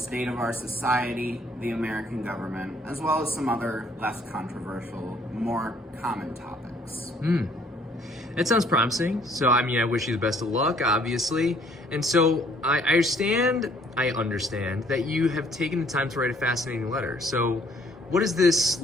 of our society, the American government, as well as some other less controversial, more common topics. That sounds promising. So, I wish you the best of luck, obviously. And so, I understand that you have taken the time to write a fascinating letter. So, what is this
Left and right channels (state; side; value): normal; both; correlation 0.61